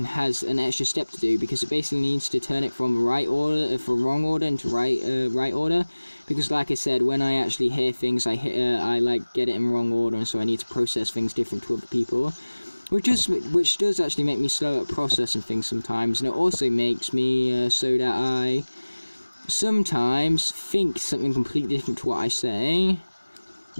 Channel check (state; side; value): inverted; both; correlation -1.00